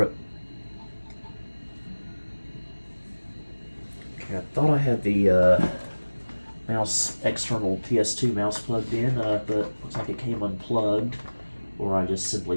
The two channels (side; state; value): both; inverted; correlation -1.00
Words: it. Okay, I thought I had the external PS2 mouse plugged in, but looks like it came unplugged, or I just simply